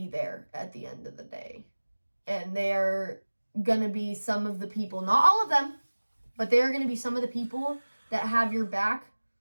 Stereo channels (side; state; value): both; inverted; correlation -1.00